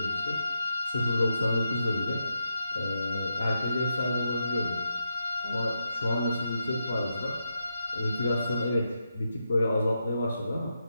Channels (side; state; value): both; inverted; correlation -0.84